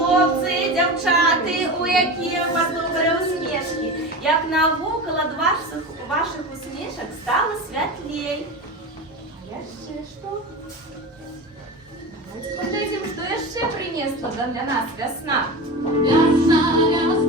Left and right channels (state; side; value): normal; both; correlation 0.27